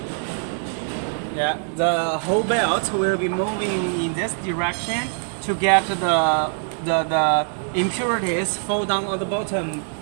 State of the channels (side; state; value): left; silent; 62 dB below the other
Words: Yeah, the whole belt will be moving in this direction to get the impurities fall down on the bottom